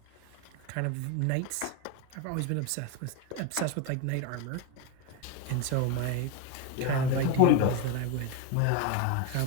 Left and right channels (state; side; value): different; both; correlation 0.02